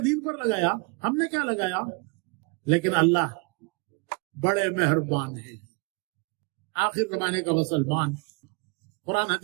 دین پر لگایا۔ ہم نے کیا لگایا؟ لیکن اللہ بڑے مہربان ہیں۔ آخر زمانے کا مسلمان قرآن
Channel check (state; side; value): quieter; left; 32.0 dB